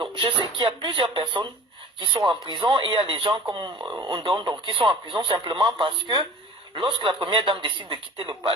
je sais qu'il y a plusieurs personnes qui sont en prison et il y a des gens comme Ondon qui sont en prison simplement parce que lorsque la première dame décide de quitter le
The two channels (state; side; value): normal; both; correlation 0.43